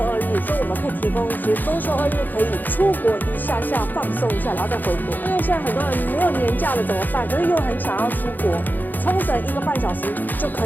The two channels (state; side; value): late; right; 0.086 ms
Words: 2日，所以我们可以提供一些周休2日可以出国一下下放松一下，然后再回国。因为现在很多人没有年假了怎么办？可是又很想要出国，冲绳1个半小时就可